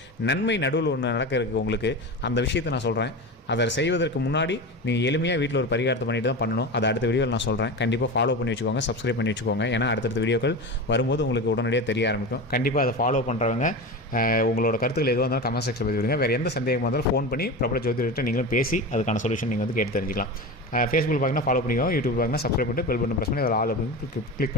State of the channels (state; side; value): normal; both; correlation 0.25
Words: நன்மை நடுவில் ஒன்று நடக்க இருக்குது உங்களுக்கு. அந்த விஷயத்தை நான் சொல்கிறேன். அதை செய்வதற்கு முன்னாடி நீங்கள் எளிமையாக வீட்டில் ஒரு பரிகாரத்தை பண்ணிட்டு தான் பண்ணணும். அதை அடுத்த வீடியோவில் நான் சொல்கிறேன். கண்டிப்பாக ஃபாலோ பண்ணி வச்சுக்கோங்க, சப்ஸ்கிரைப் பண்ணி வச்சுக்கோங்க. ஏன்னா அடுத்தடுத்த வீடியோக்கள் வரும்போது உங்களுக்கு உடனடியாக தெரிய ஆரம்பிக்கும். கண்டிப்பாக அதை ஃபாலோ பண்ணுறவங்க உங்களோட கருத்துக்கள் எதுவாக இருந்தாலும் கமெண்ட் செக்ஷன் பதிவு விடுங்க. வேறு எந்த சந்தேகமாக இருந்தாலும் ஃபோன் பண்ணி பிரபல ஜோதிடர்கிட்ட நீங்களும் பேசி அதுக்கான சொல்யூஷன் நீங்கள் வந்து கேட்டு தெரிஞ்சிக்கலாம். ஃபேஸ்புக் பார்க்கணும் ஃபாலோ பண்ணிக்கோங்க, யூடியூப் பார்க்கணும் சப்ஸ்கிரைப் பண்ணிட்டு பெல் பட்டன் ப்ரெஸ் பண்ணி அதில் ஆல் அப்படின்னு கிளிக்